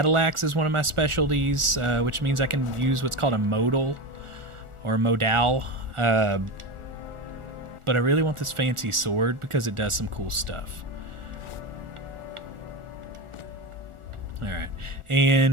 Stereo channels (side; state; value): left; late; 1.4 ms